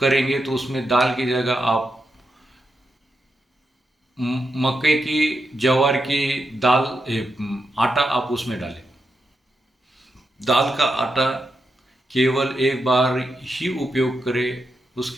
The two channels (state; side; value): normal; both; correlation 0.86